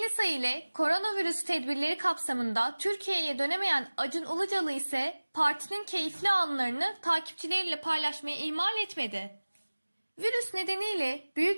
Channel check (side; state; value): both; inverted; correlation -1.00